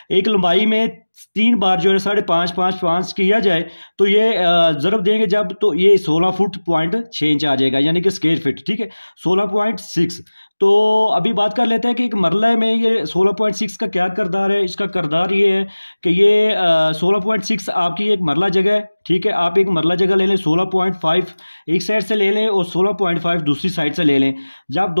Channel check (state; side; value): inverted; both; correlation -1.00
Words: एक लंबाई में 3 बार जो है 5.5 किया जाए तो ये ज़रब देंगे जब, तो ये 16 फुट 0.6 इंच आ जाएगा, यानी कि स्क्वायर फिट। ठीक है, 16.6। तो अभी बात कर लेते हैं कि एक मरला में ये 16.6 का क्या किरदार है। इसका किरदार ये है कि ये 16.6 आपकी एक मरला जगह है। ठीक है, आप एक मरला जगह ले लें, 16.5 एक साइड से ले लें और 16.5 दूसरी साइड से ले लें। जब